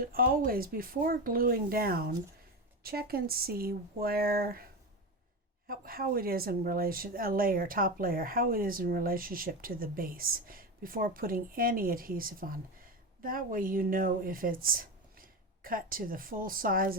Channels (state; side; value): normal; both; correlation 0.19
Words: always, before gluing down, check and see where, how it is in relation, top layer, how it is in relationship to the base before putting any adhesive on. That way you know if it's cut to the full size